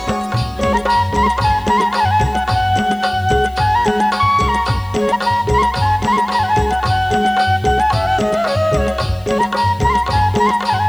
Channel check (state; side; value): noise; left; hiss, 28 dB below the sound